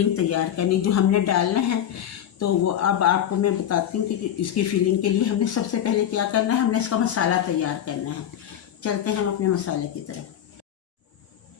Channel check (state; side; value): quieter; right; 10.3 dB